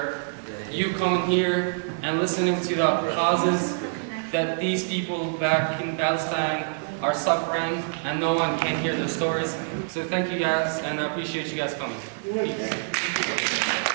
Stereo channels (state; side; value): silent; left; digital silence